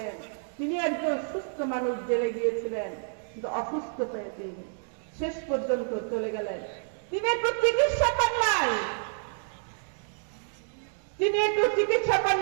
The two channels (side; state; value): left; silent; digital silence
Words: তিনি একজন সুস্থ মানুষ, জেলে গিয়েছিলেন, কিন্তু অসুস্থ হয়ে তিনি শেষ পর্যন্ত চলে গেলেন। তিনি একটু চিকিৎসা পান নাই, তিনি একটু চিকিৎসা পান